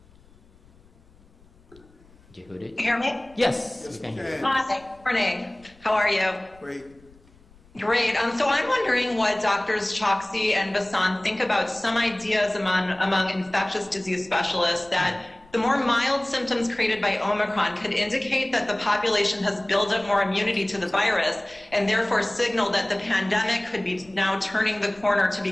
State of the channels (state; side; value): noise; left; rumble, 28 dB below the sound